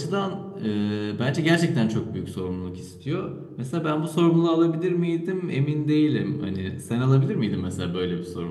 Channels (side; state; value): both; identical; correlation 1.00